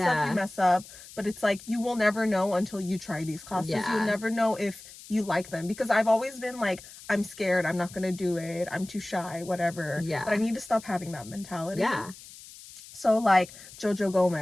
you mess up. But it's like, you will never know until you try these classes. You'll never know if you like them, because I've always been like, I'm scared, I'm not gonna do it, I'm too shy, whatever. But I need to stop having that mentality. So like Jojo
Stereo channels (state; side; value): noise; left; hiss, 18 dB below the sound